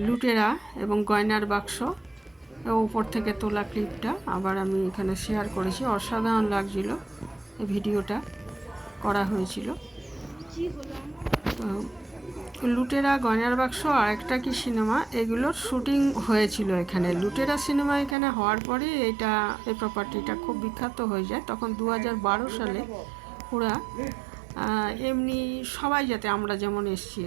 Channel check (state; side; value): drops out; left; at 18.2 s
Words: লুটেরা এবং গয়নার বাক্স উপর থেকে তোলা ক্লিপটা আবার আমি এখানে শেয়ার করেছি অসাধারণ লাগছিল এই ভিডিওটা করা হয়েছিল তো লুটেরা গয়নার বাক্স আর একটা কি সিনেমা এগুলোর শুটিং হয়েছিল এখানে লুটেরা সিনেমা এখানে হওয়ার পরে এই প্রপার্টিটা খুব বিখ্যাত হয়ে যায় তখন 2012 সালে ওরা এমনি সবাই যাতে আমরা যেমন এসছি